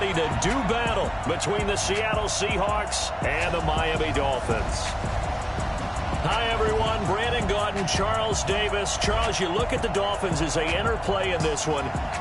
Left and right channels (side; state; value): both; identical; correlation 1.00